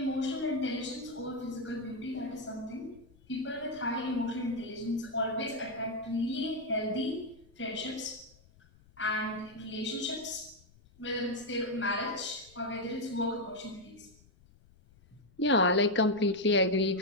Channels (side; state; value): left; noise; rumble, 27 dB below the sound